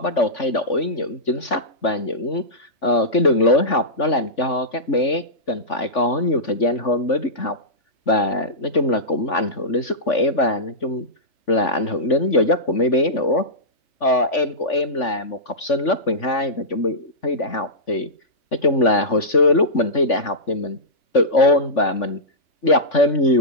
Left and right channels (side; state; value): right; late; 3.5 ms